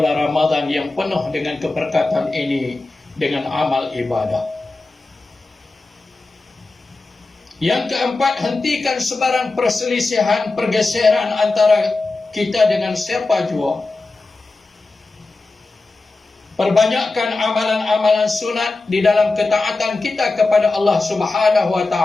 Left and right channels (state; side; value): quieter; right; 3.4 dB